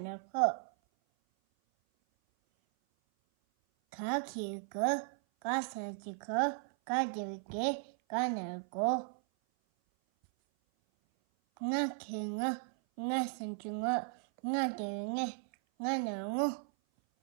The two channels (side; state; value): left; silent; 54 dB below the other